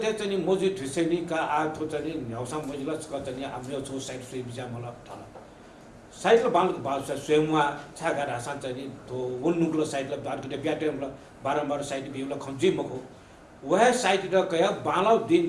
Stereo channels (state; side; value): identical; both; correlation 1.00